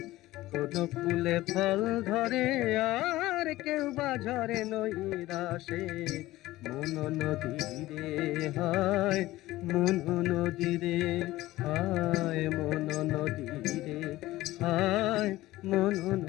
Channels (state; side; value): quieter; right; 17.1 dB